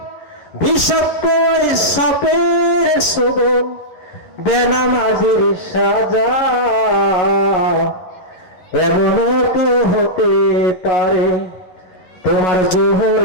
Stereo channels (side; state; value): right; late; 11 ms